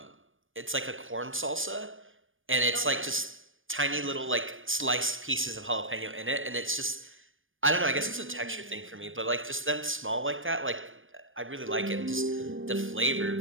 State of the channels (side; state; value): left; late; 0.58 ms